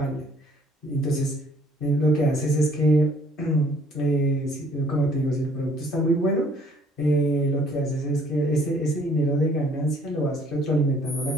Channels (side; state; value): both; normal; correlation 0.60